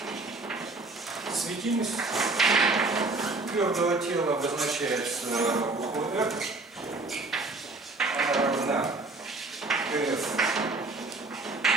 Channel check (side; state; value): left; quieter; 3.3 dB